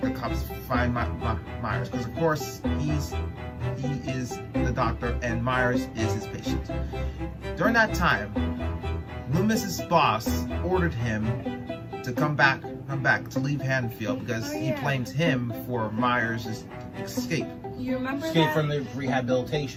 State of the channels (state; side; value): identical; both; correlation 1.00